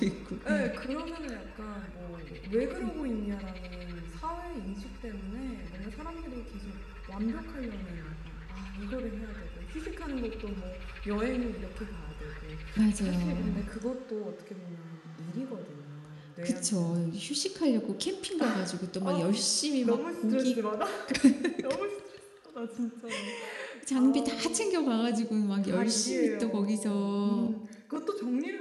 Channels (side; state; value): both; identical; correlation 1.00